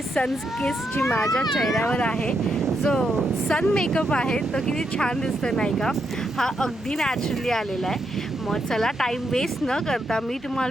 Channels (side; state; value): both; normal; correlation 0.80